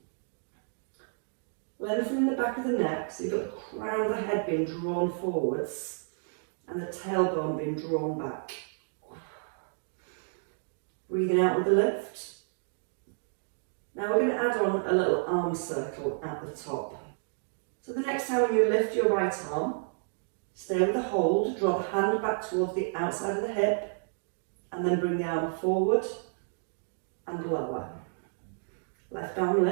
Lengthening the back of the neck, so you've got the crown of the head being drawn forwards and the tailbone being drawn back. Breathing out with the lift. Now we're going to add on a little arm circle at the top. So the next time you lift your right arm, stay with the hold, draw the hand back towards the outside of the hip, and then bring the arm forward and lower. Left arm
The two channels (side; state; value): left; silent; digital silence